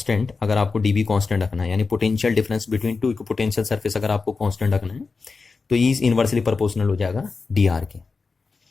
अगर आपको डी बी कॉन्स्टेंट रखना है, यानी potential difference between two equipotential surface अगर आपको कॉन्स्टेंट रखना है तो ई इज इनवर्सली प्रोपोर्शनल हो जाएगा डी आर के।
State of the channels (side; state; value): right; quieter; 4.4 dB